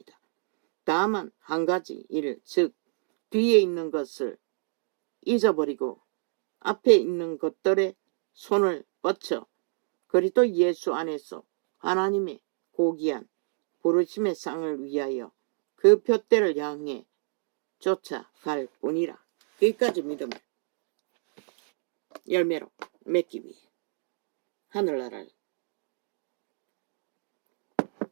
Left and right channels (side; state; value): left; silent; digital silence